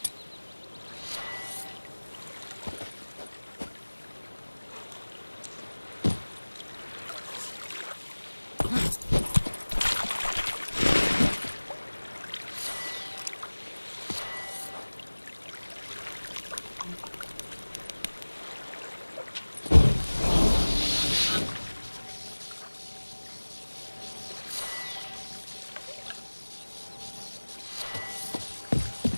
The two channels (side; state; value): both; inverted; correlation -1.00